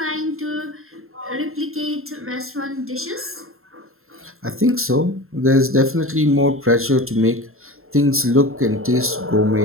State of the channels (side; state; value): left; late; 0.61 ms